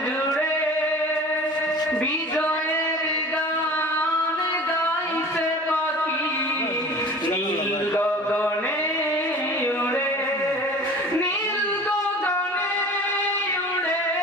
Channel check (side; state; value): both; normal; correlation 0.41